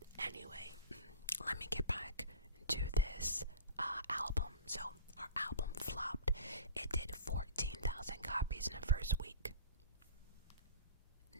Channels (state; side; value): inverted; both; correlation -0.36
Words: Anyway, let me get back to this album. So her album flopped. It did 14,000 copies in the first week.